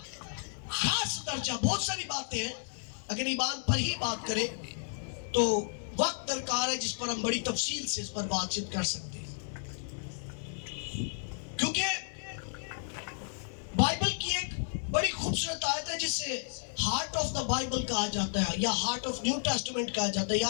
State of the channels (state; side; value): silent; right; 56 dB below the other